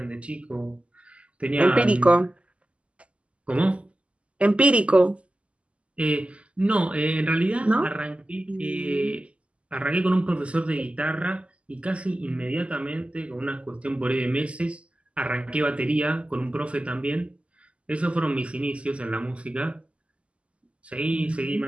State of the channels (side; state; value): left; late; 0.059 ms